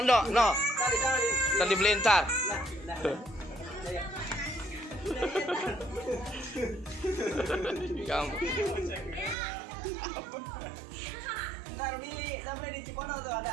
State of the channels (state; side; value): drops out; left; at 9.3 s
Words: no. Ntar dibeliin ntar. Kamu. Ntar beli di Cipondo tuh